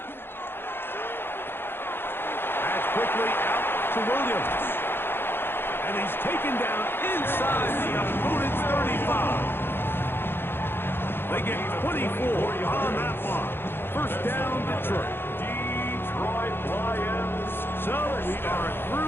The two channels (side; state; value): right; late; 0.10 ms